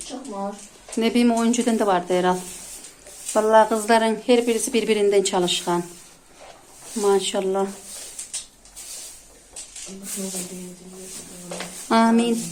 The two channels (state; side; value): identical; both; correlation 1.00